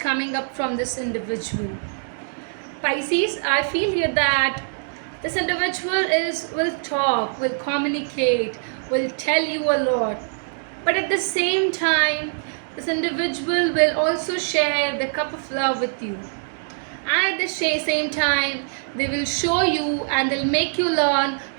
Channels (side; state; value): left; silent; digital silence